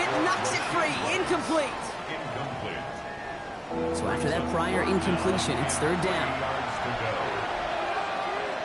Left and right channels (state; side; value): identical; both; correlation 1.00